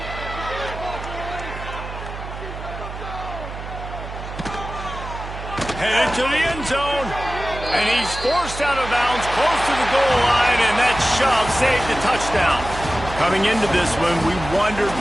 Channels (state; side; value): noise; right; hum, 10 dB below the sound